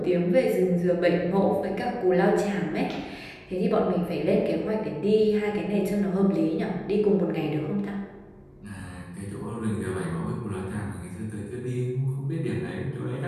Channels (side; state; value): both; identical; correlation 1.00